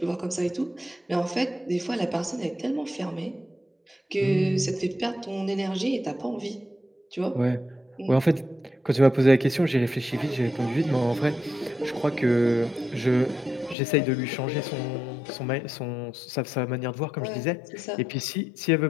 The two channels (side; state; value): right; drops out; at 13.8 s